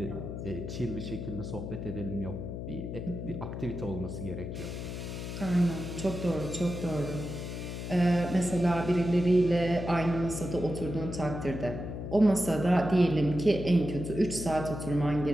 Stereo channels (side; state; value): left; noise; hum, 6 dB below the sound